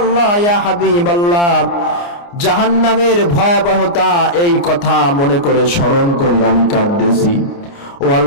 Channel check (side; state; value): right; late; 29 ms